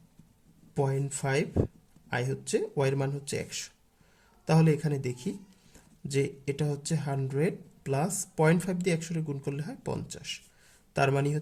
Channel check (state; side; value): identical; both; correlation 1.00